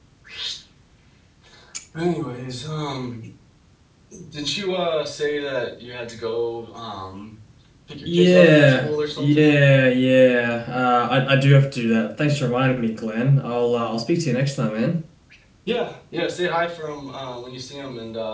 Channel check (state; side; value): identical; both; correlation 1.00